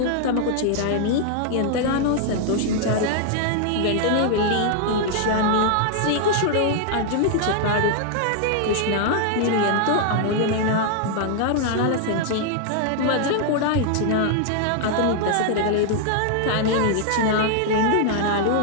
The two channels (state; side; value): different; both; correlation 0.00